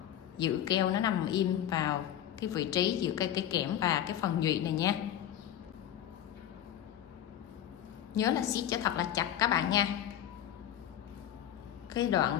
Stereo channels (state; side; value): quieter; right; 10.9 dB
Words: giữ keo nó nằm im vào cái vị trí giữa cái kẽm và cái phần nhụy này nha. Nhớ là siết cho thật là chặt các bạn nha. Cái